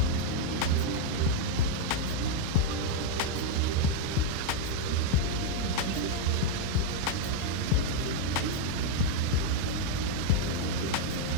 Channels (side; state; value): both; different; correlation 0.00